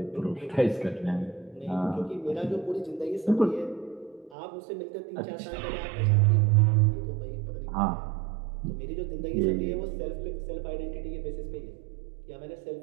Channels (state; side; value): drops out; left; at 4.4 s